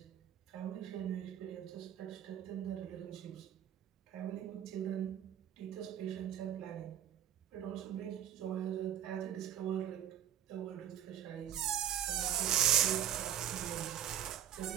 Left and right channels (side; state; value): left; quieter; 10.5 dB